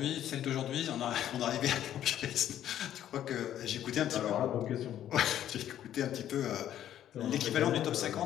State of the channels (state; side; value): quieter; right; 11.3 dB